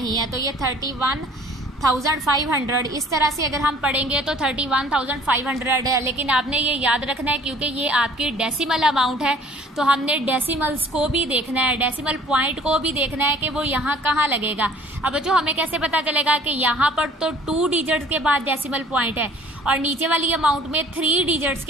है, तो ये 31,500। इस तरह से अगर हम पढ़ेंगे तो 31,500 है। लेकिन आपने ये याद रखना है क्योंकि ये आपकी डेसिमल अमाउंट है, तो हमने डेसिमल्स को भी देखना है, डेसिमल पॉइंट को भी देखना है कि वो यहाँ कहाँ लगेगा। अब बच्चों हमें कैसे पता चलेगा कि यहाँ पर तो 2 डिजिट्स के बाद डेसिमल पॉइंट है और नीचे वाली अमाउंट में 3 डिजिट्स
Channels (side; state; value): both; normal; correlation 0.53